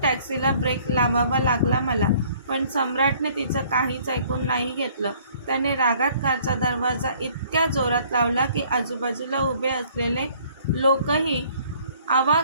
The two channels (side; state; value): both; inverted; correlation -0.58